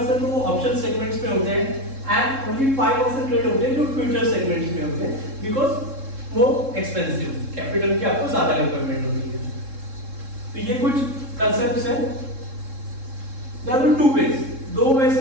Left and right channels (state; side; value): late; left; 3.7 ms